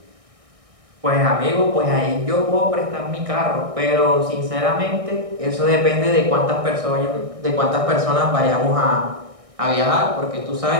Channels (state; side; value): late; left; 1.6 ms